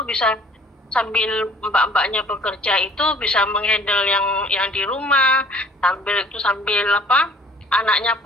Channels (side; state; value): both; normal; correlation 0.54